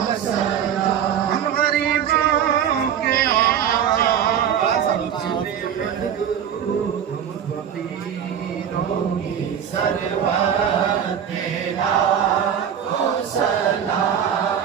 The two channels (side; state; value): left; quieter; 8.8 dB